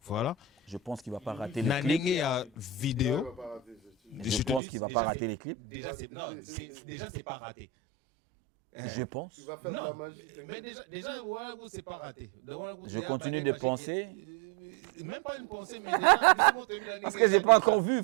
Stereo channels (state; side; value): drops out; left; at 4.6 s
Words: Voilà. Je pense qu'il ne va pas rater les clips. Nanenge vidéo. Je pense qu'il ne va pas rater les clips. Déjà, c'est pas raté. Je pense. Non, mais déjà voilà, c'est pas raté. Je continue de penser. Même pas une pensée, mais déjà. Parce que j'ai pas encore vu,